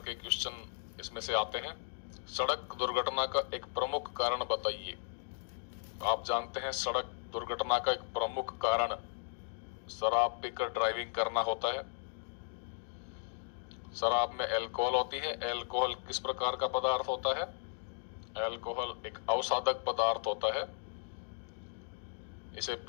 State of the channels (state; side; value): silent; right; digital silence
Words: क्वेश्चन इसमें से आते हैं। सड़क दुर्घटना का एक प्रमुख कारण बताइए। आप जानते हैं सड़क दुर्घटना का एक प्रमुख कारण शराब पीकर ड्राइविंग करना होता है। शराब में अल्कोहल होती है। अल्कोहल किस प्रकार का पदार्थ होता है? अल्कोहल एक अवसादक पदार्थ होता है। इसे